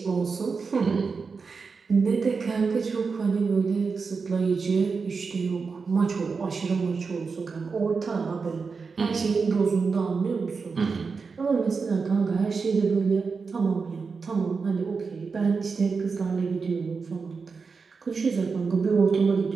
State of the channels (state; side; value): quieter; left; 4.9 dB